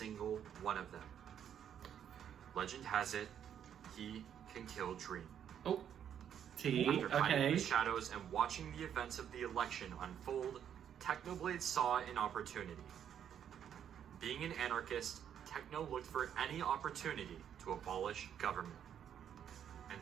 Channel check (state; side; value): quieter; left; 9.1 dB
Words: one of them. Legend has it he can kill Dream. Oh. T. After hiding in Okay. the shadows and watching the events of the election unfold, Technoblade saw an opportunity. Being an anarchist, Techno looked for any opportunity to abolish government. And